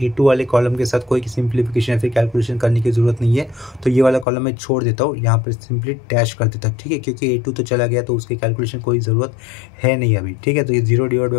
A2 वाले कॉलम के साथ कोई सिंप्लीफिकेशन या फिर कैलकुलेशन करने की ज़रूरत नहीं है। तो ये वाला कॉलम मैं छोड़ देता हूँ, यहाँ पर सिंपली डैश कर देता हूँ। ठीक है, क्योंकि A2 तो चला गया तो उसकी कैलकुलेशन कोई ज़रूरत है नहीं अभी। ठीक है, तो ये 0 /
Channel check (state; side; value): drops out; right; at 4.2 s